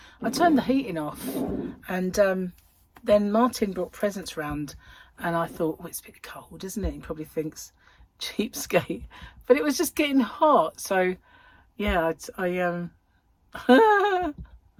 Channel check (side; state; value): both; identical; correlation 1.00